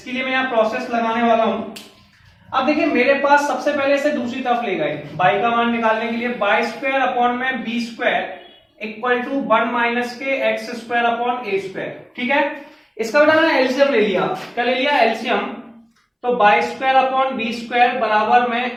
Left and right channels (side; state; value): both; identical; correlation 1.00